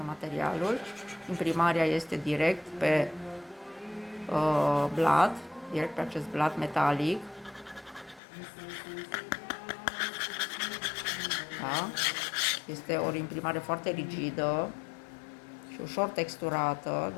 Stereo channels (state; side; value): drops out; right; at 8.2 s